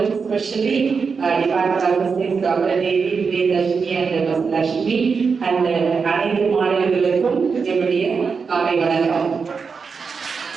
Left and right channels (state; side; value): quieter; left; 5.4 dB